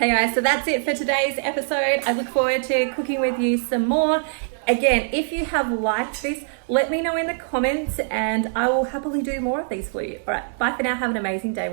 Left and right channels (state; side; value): silent; left; digital silence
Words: guys, so that's it for today's episode. I look forward to cooking with you some more. Again, if you have liked this, let me know in the comments, and I will happily do more of these for you. All right, bye for now. Have an amazing day